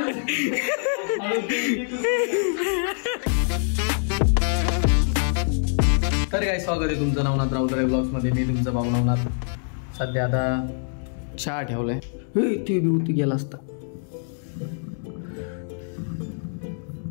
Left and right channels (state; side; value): silent; right; digital silence